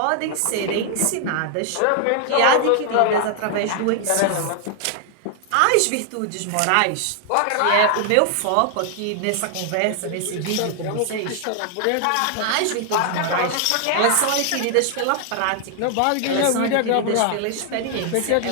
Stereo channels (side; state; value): both; different; correlation 0.00